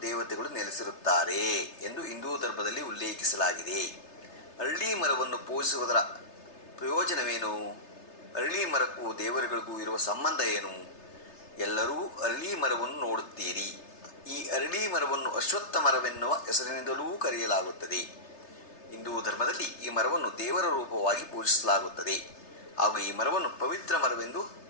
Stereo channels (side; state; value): right; late; 3.3 ms